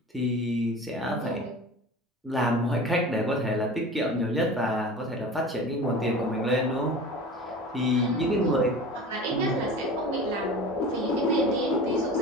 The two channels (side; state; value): both; normal; correlation 0.36